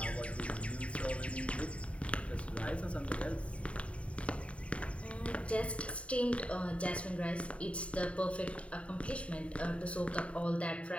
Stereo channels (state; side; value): late; right; 0.063 ms